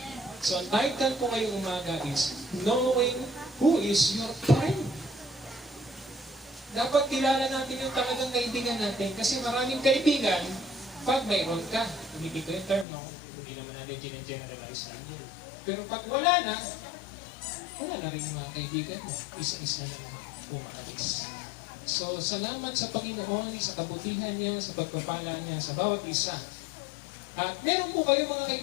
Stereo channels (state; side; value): drops out; right; at 12.9 s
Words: So, ang title ko ngayong umaga is Knowing Who is Your Friend. Dapat kilala natin yung talagang kaibigan natin kasi maraming kaibigan pag mayroon ka. Hindi ko yung term, no? Hindi naman natin generalize lang. Pero pag wala na rin yung mga kaibigan mo. Isa-isa na umaalis. So, salamat sa Panginoon, sa kabutihan niya, sa pagpapala niya, sa bawat isa. At meron po kayo mga